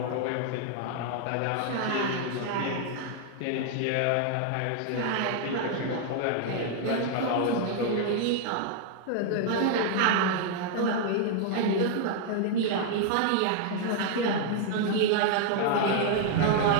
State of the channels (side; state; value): both; different; correlation 0.00